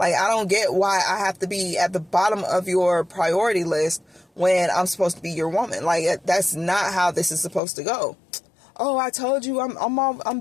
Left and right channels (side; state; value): right; drops out; at 7.6 s